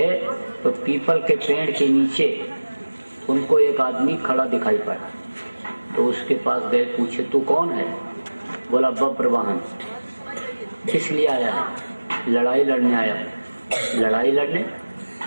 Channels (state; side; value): inverted; both; correlation -1.00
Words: तो पीपल के पेड़ के नीचे उनको एक आदमी खड़ा दिखाई पड़ा। तो उसके पास गए, पूछे तू कौन है? बोला बब्रवाहन। किस लिए आया है? लड़ाई लड़ने आया। लड़ाई लड़ने?